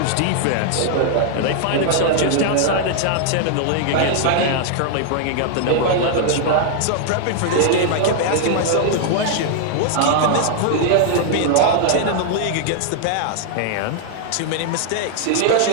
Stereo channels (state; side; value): different; both; correlation -0.01